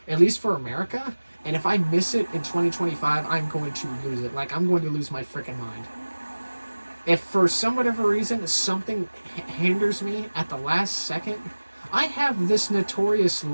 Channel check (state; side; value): inverted; both; correlation -1.00